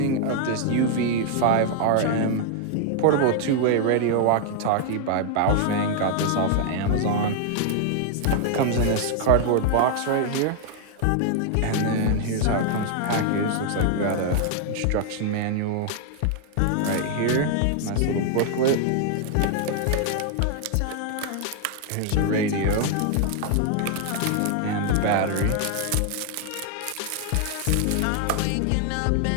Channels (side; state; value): both; different; correlation 0.00